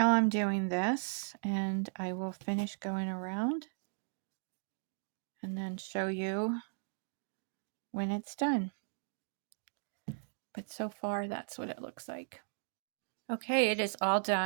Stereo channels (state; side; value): silent; left; digital silence